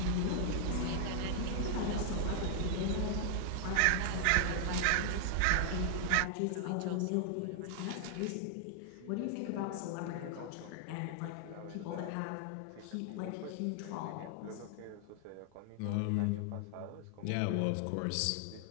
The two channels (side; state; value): both; different; correlation 0.00